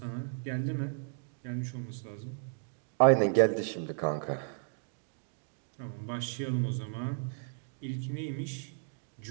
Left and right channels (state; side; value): silent; left; digital silence